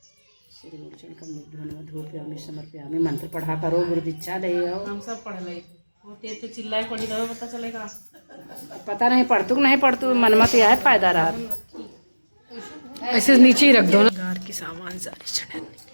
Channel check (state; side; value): inverted; both; correlation -1.00